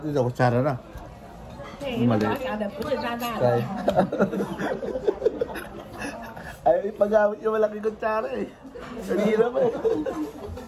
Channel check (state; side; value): identical; both; correlation 1.00